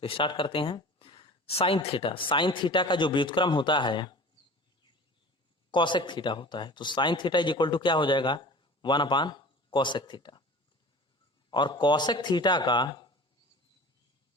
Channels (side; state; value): both; normal; correlation 0.40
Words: स्टार्ट करते हैं। साइन थीटा का जो व्युत्क्रम होता है कॉसेक थीटा होता है। तो sine theta is equal to क्या हो जाएगा 1 कॉसेक थीटा, और कॉसेक थीटा का